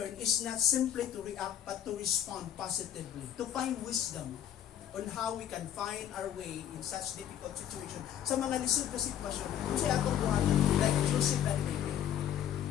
is not simply to react but to respond positively, to find wisdom on how we can find our way in such difficult situation. Sa mga lisod na sitwasyon, kung siya atong buhatan, like Joseph and Mary.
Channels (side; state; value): right; quieter; 10.3 dB